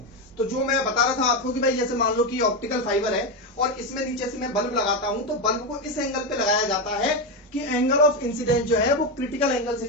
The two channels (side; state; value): both; normal; correlation 0.11